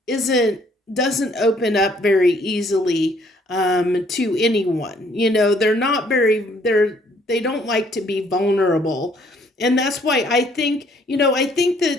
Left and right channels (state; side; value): normal; both; correlation 0.64